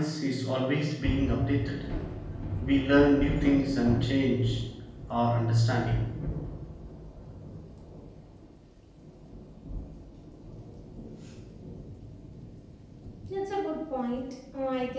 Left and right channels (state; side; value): identical; both; correlation 1.00